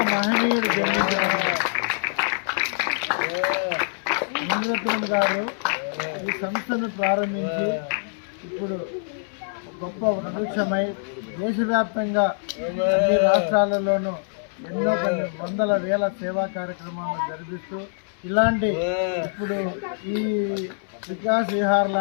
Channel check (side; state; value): right; silent; 62 dB below the other